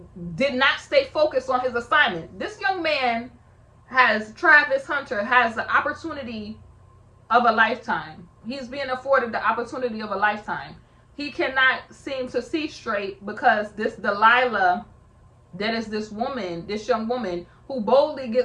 did not stay focused on his assignment. This young man Travis Hunter has the opportunity of a lifetime. He's being afforded the opportunity of a lifetime. He cannot seem to see straight because this Delilah, that is this young woman who boldly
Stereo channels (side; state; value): both; identical; correlation 1.00